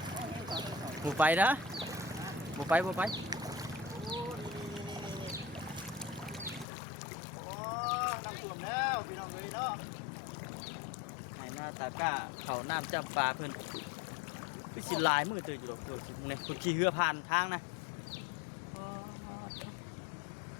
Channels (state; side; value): drops out; right; at 6.7 s